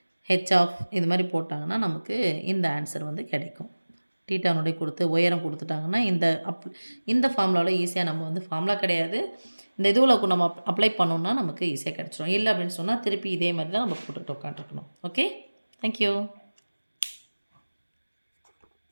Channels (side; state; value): both; inverted; correlation -1.00